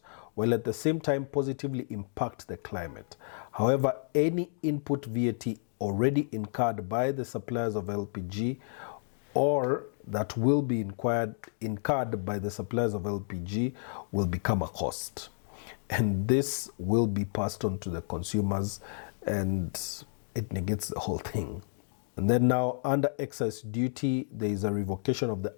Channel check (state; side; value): silent; right; digital silence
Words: while at the same time positively impact the climate. However, any input VAT already incurred by the suppliers of LPG or that will be incurred by the suppliers of LPG will become a cost. And this will be passed on to the consumers, and it negates the whole thing. And then now, under excise duty, there is a revocation of the